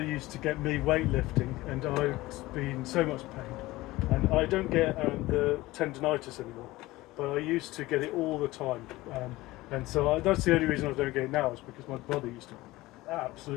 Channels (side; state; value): right; quieter; 18.8 dB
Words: used to get me weightlifting, and I've been in so much pain, and I don't get the tendonitis anymore. But I used to get it all the time, and so that's the only reason I don't get it now is because my brother used to